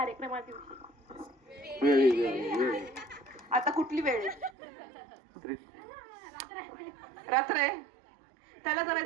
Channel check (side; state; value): left; drops out; at 4.5 s